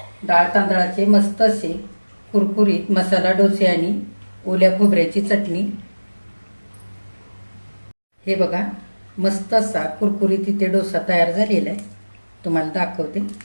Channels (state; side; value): inverted; both; correlation -1.00